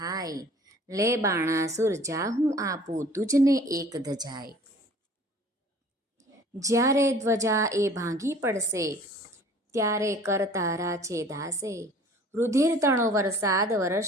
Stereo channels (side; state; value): both; normal; correlation 0.49